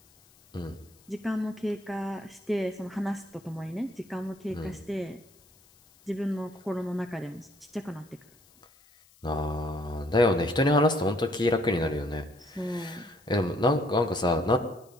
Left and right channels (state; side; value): noise; left; hiss, 29 dB below the sound